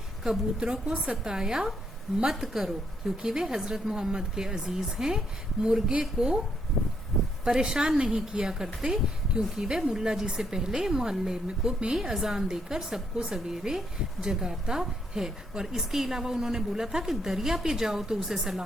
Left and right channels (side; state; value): both; normal; correlation 0.74